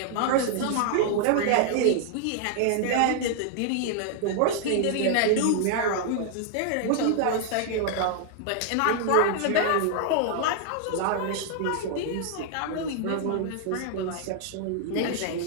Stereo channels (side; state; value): both; different; correlation 0.00